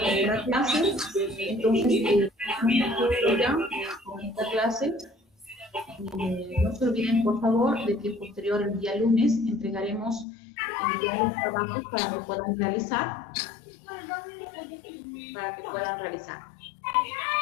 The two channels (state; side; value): drops out; right; at 10.2 s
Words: clase. Entonces, ya con esta clase, no se olviden, por favor, de que posterior el día lunes entregaremos ya los trabajos para que puedan realizar.